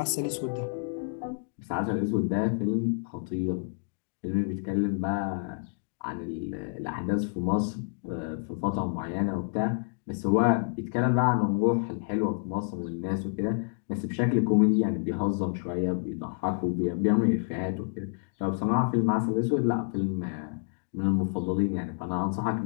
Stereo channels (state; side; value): silent; right; digital silence